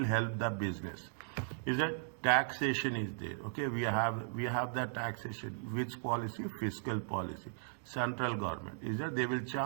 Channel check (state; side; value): silent; left; digital silence